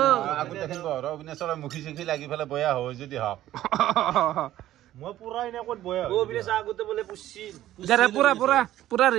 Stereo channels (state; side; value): quieter; left; 13.6 dB